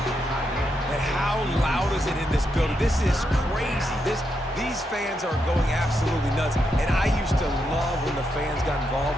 And how loud is it in this building? This is crazy. These fans are going absolutely nuts. And I used to love when the fans got involved,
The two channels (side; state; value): both; normal; correlation 0.82